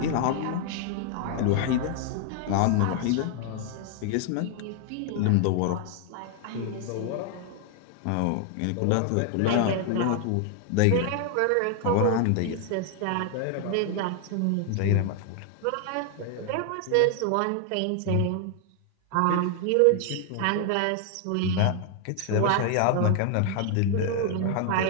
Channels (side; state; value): both; different; correlation 0.00